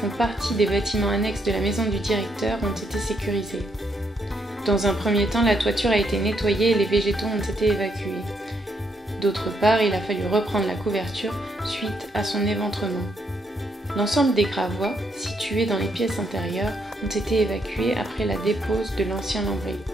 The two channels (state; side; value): normal; both; correlation 0.76